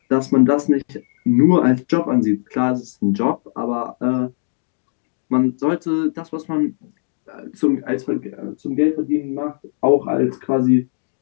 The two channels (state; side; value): silent; right; digital silence